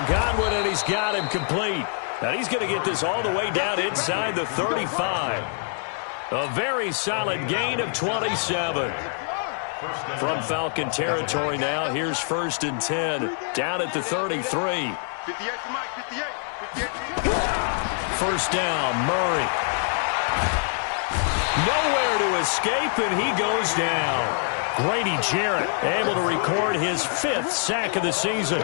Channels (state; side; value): silent; right; 62 dB below the other